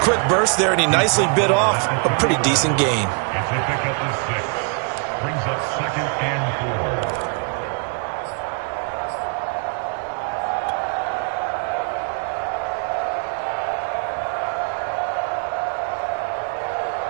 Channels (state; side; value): quieter; left; 36.2 dB